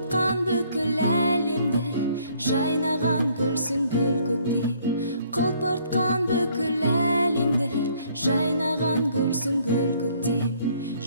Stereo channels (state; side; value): inverted; both; correlation -0.63